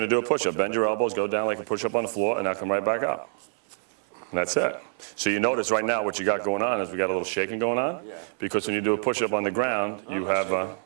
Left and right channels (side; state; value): left; silent; 57 dB below the other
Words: to do a push-up. Bend your elbows, go down like a push-up on the floor, and now come right back up. And that's it. So you notice right now what you got going on is we got a little shaking going on. Yeah. Because when you do a push-up on the ground, you have,